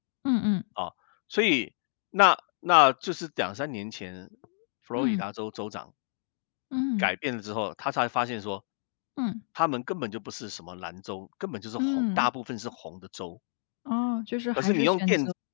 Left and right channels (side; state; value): right; silent; digital silence